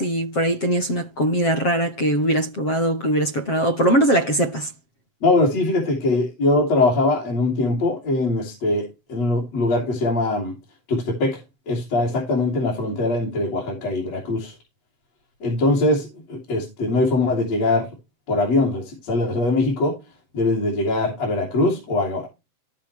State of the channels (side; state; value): right; late; 7.6 ms